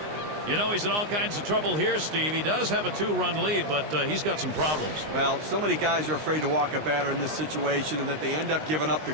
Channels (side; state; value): left; late; 19 ms